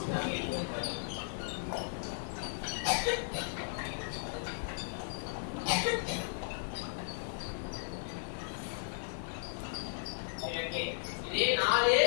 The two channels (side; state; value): right; silent; digital silence